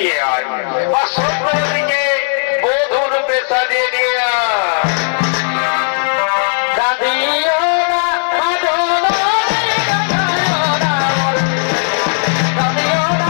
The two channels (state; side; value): silent; right; 66 dB below the other